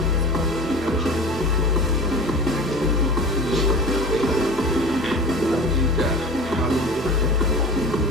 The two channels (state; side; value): normal; both; correlation 0.37